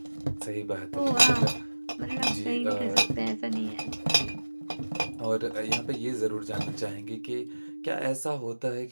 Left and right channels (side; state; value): both; inverted; correlation -1.00